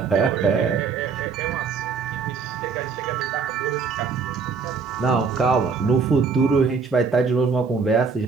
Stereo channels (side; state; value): left; quieter; 5.3 dB